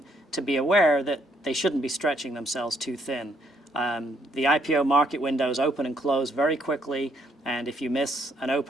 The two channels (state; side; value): normal; both; correlation 0.70